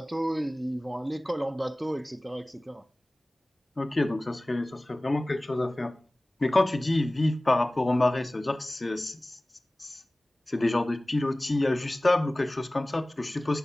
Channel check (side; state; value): both; normal; correlation 0.98